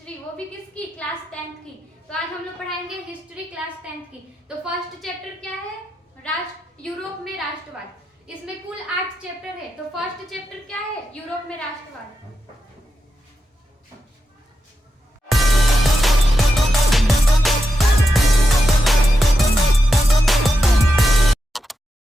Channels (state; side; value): normal; both; correlation 0.87